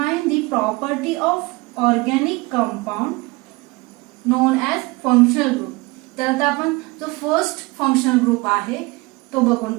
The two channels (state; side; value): quieter; left; 23.6 dB